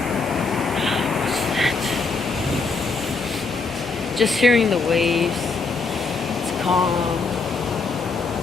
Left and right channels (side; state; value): right; quieter; 4.3 dB